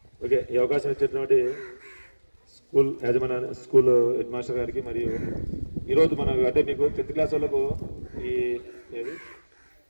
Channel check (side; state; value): both; inverted; correlation -1.00